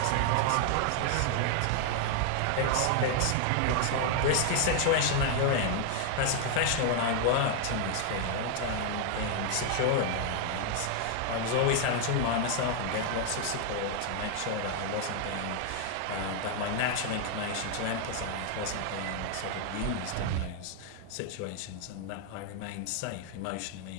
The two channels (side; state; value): both; different; correlation 0.00